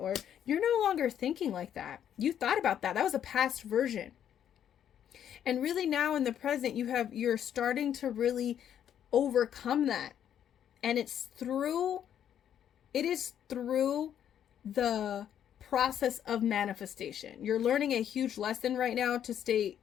you're no longer thinking like that. You thought about that. That was a past version. And really now in the present, you're starting to really overcome that. And it is through the process of manifestation. You're learning a huge lesson right now to stay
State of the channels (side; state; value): right; quieter; 9.7 dB